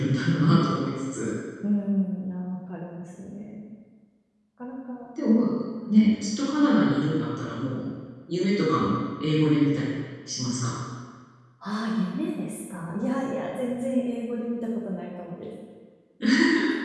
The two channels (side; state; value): both; identical; correlation 1.00